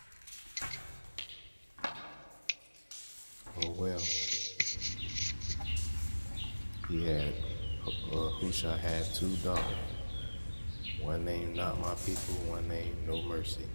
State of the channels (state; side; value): inverted; both; correlation -1.00